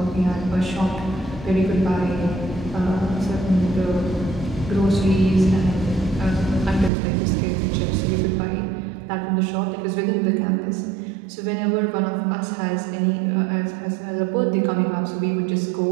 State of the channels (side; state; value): left; drops out; at 6.9 s